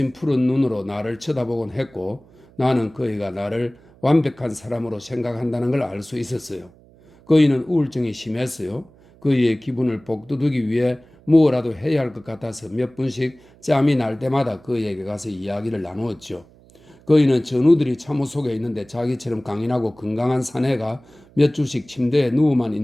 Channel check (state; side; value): noise; right; hum, 27 dB below the sound